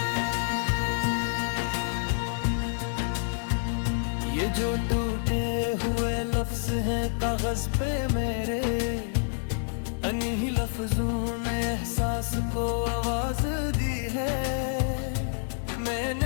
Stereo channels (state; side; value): silent; right; digital silence